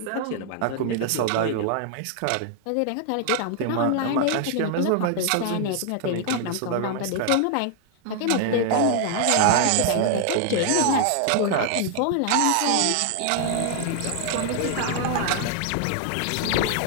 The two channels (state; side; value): different; both; correlation 0.00